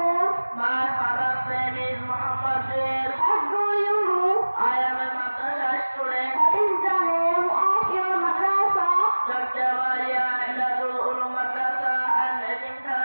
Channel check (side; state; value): both; inverted; correlation -1.00